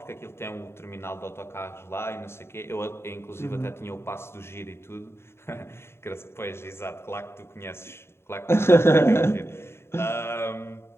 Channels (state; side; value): late; right; 0.12 ms